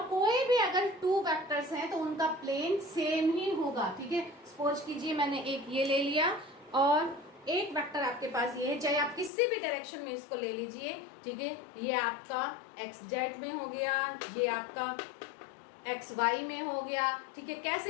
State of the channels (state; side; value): drops out; right; at 9.3 s